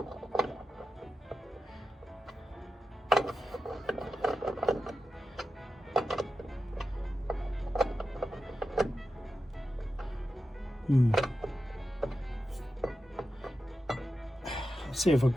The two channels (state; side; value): normal; both; correlation 0.91